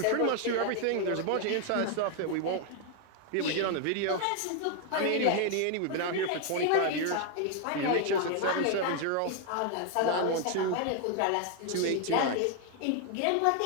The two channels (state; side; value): different; both; correlation 0.00